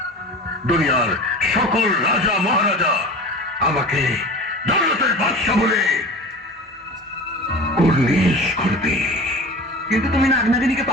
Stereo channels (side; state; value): both; normal; correlation 0.35